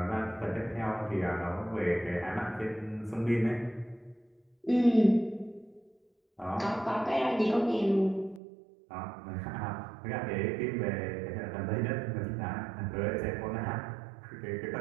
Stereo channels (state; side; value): drops out; left; at 8.4 s